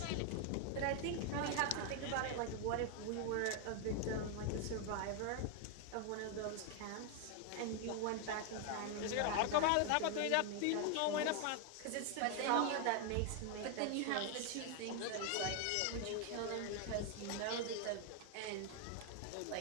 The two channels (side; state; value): both; different; correlation 0.01